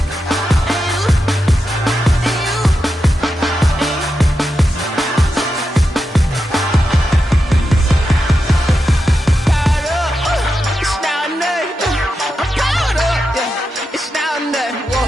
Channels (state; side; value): normal; both; correlation 0.88